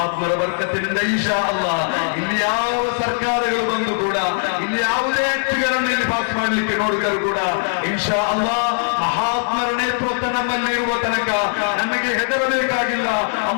ಬರ್ಕತ್ತಿನಿಂದ ಇನ್ಶಾ ಅಲ್ಲಾಹ್ ಇಲ್ಲಿ ಯಾವ ಸರ್ಕಾರಗಳು ಬಂದು ಕೂಡ, ಇಲ್ಲಿ ಯಾವುದೇ ವ್ಯಕ್ತಿಗಳನ್ನು ಇಲ್ಲಿ ಪಾಸ್ ಮಾಡಲಿಕ್ಕೆ ನೋಡಿದರೂ ಕೂಡ ಇನ್ಶಾ ಅಲ್ಲಾಹ್ ಮಹಾತ್ಮರ ನೇತೃತ್ವ ನಮ್ಮಲ್ಲಿ ಇರುವ ತನಕ ನಮಗೆ ಹೆದರಬೇಕಾಗಿಲ್ಲ.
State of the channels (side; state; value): right; silent; digital silence